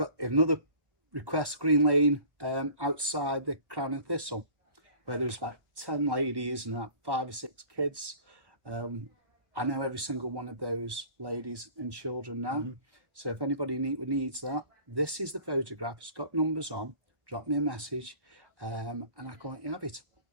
another request, Green Lane, outside the Crown and Thistle, where there was about 10 ladies and about 5 or 6 kids. I know every single one of those ladies and children now. So if anybody needs that, this is the photograph. It's got numbers on. Drop me a message, and I can let you have it.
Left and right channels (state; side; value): late; left; 1.1 ms